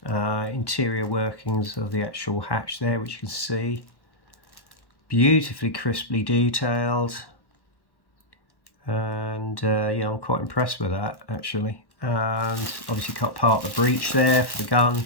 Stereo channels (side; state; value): right; late; 1.1 ms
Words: interior workings of the actual hatch there, which you can see. Beautifully crisply detailed. And yeah, I'm quite impressed with that actually. And obviously cut part of the breech there for the gun,